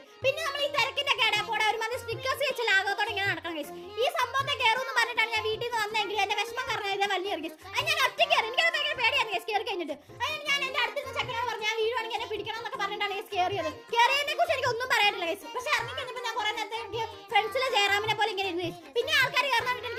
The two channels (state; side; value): identical; both; correlation 1.00